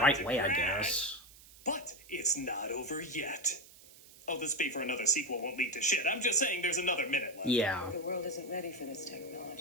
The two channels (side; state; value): right; noise; hiss, 22 dB below the sound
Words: right to way, I crash. guess. But it's not over yet. Oh, this fee for another sequel won't lead to shit. I'm just saying there's another minute left. Yeah. The world isn't ready for this